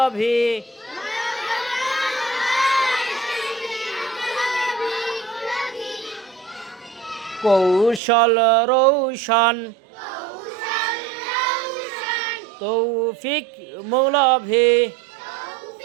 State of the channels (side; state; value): left; drops out; at 8.0 s